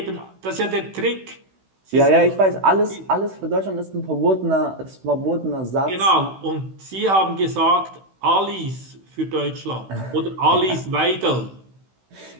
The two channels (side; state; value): left; late; 16 ms